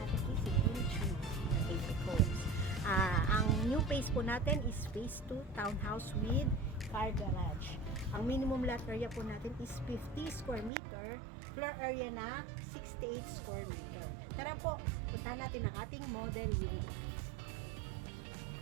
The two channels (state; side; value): drops out; left; at 10.7 s